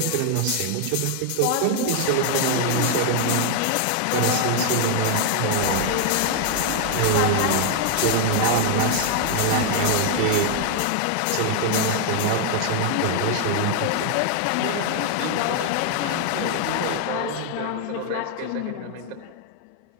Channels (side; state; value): both; different; correlation 0.00